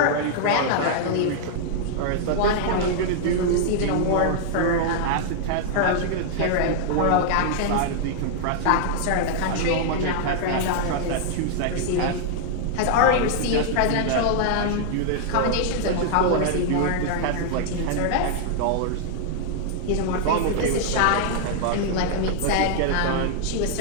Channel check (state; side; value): different; both; correlation -0.01